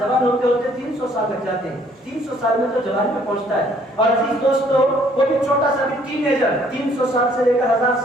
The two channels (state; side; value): normal; both; correlation 0.62